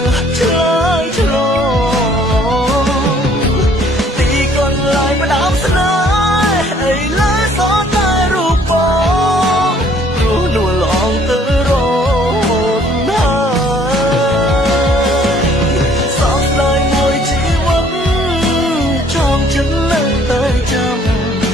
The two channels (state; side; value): normal; both; correlation 0.60